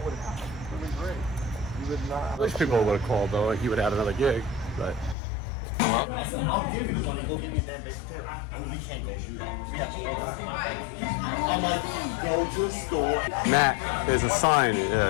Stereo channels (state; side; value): drops out; right; at 5.2 s